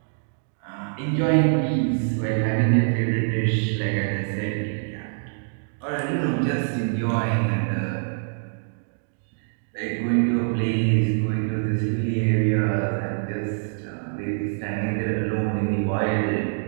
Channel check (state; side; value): silent; left; digital silence